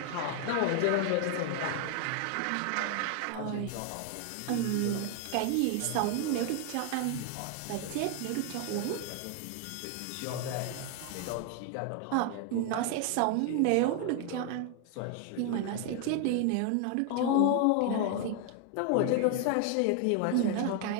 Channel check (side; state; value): both; different; correlation 0.00